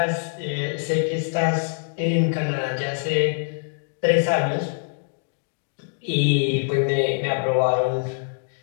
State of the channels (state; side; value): silent; right; digital silence